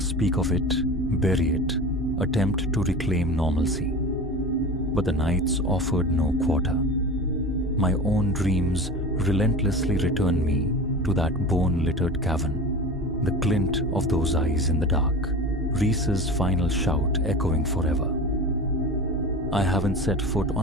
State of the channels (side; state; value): both; normal; correlation 0.32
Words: of it, bury it, attempt to reclaim normalcy. But the nights offered no quarter. My own dreams relentlessly returned me to that bone-littered cavern, the glint of those eyes in the dark, Reese's final shout echoing forever. I haven't set foot